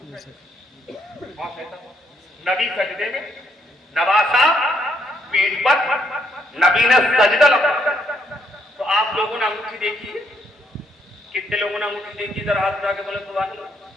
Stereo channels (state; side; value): normal; both; correlation 0.72